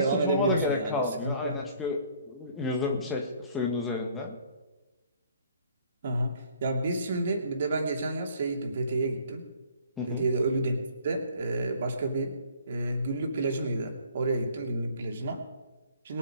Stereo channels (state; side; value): inverted; both; correlation -0.56